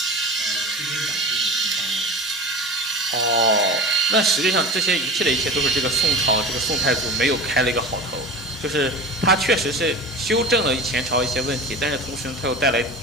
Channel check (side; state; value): both; normal; correlation 0.32